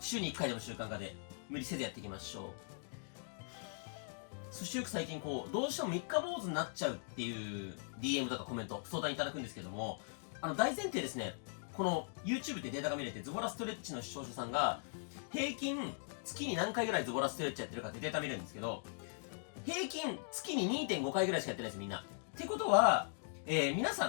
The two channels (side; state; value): right; silent; digital silence